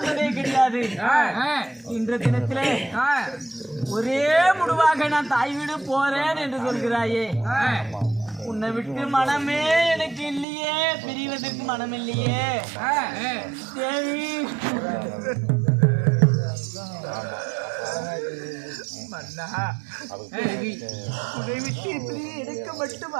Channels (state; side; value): drops out; left; at 10.5 s